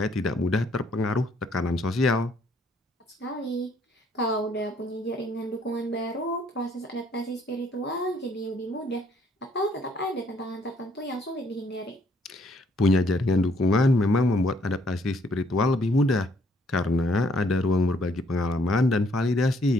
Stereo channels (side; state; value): both; normal; correlation 0.66